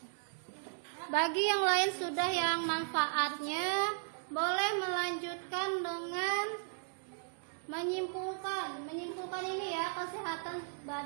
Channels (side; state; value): left; silent; digital silence